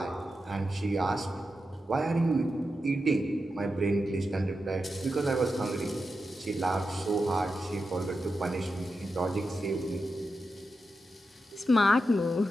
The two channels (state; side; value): normal; both; correlation 0.89